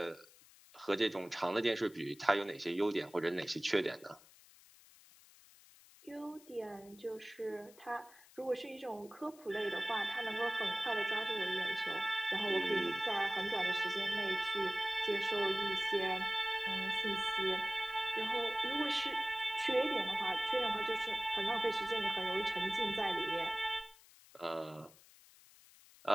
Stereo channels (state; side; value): noise; left; hiss, 24 dB below the sound